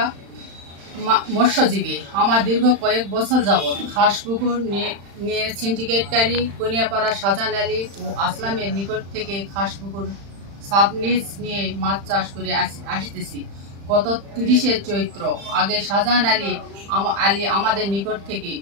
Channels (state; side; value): late; left; 35 ms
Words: মৎস্যজীবী। আমার দীর্ঘ কয়েক বছর যাবৎ খাসপুকুর নিয়ে সিন্ডিকেটকারী কনিয়াপাড়া শাহজাহান আলী ও আসলামের নিকট থেকে খাসপুকুর সাবলিজ নিয়ে মাছ চাষ করে আসতেছি। গত 30শে চৈত্র আগে শাহজাহান আলী আমাদের নিকট থেকে